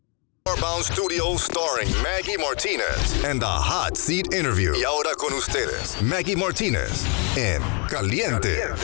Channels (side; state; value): right; quieter; 35.5 dB